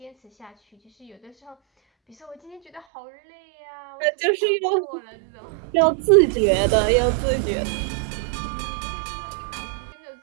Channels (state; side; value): drops out; left; at 2.8 s